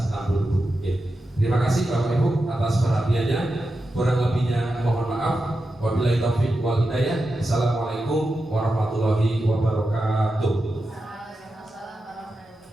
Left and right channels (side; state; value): both; normal; correlation 0.90